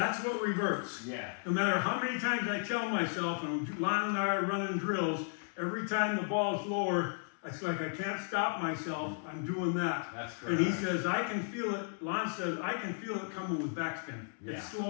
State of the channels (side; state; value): right; silent; digital silence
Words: what reverts. Yeah. No matter how many times I tell myself, and Lon and I are running drills, every time the ball's lower, it's like I can't stop myself. I'm doing that. That's correct. And he says, I can feel it. Lon says, I can feel it coming with backspin. Yeah. It's